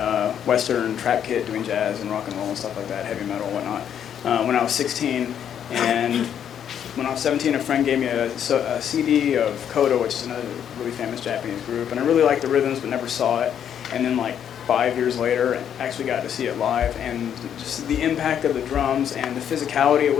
Western trap kit, doing jazz and rock and roll and stuff like that, heavy metal and whatnot, when I was 16. And when I was 17, a friend gave me a CD of Kodo, which is another really famous Japanese group, and I really liked the rhythms but never saw it. And then 5 years later, I actually got to see it live, and just the impact of the drums and the physicality. It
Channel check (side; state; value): right; quieter; 9.1 dB